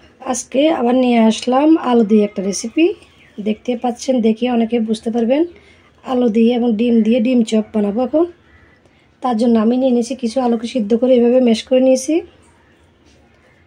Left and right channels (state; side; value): identical; both; correlation 1.00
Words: আজকে আবার নিয়ে আসলাম আলু দিয়ে একটা রেসিপি। দেখতে পাচ্ছেন, দেখে অনেকে বুঝতে পারবেন আলু দিয়ে এবং ডিম দিয়ে ডিম চপ বানাবো এখন। তার জন্য আমি নিয়ে নিয়েছি কিছু আলুকে সিদ্ধ করে এভাবে ম্যাশ করে নিয়েছি।